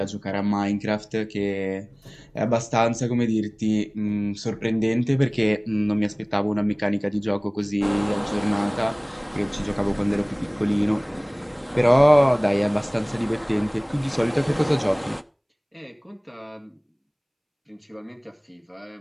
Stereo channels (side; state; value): both; identical; correlation 1.00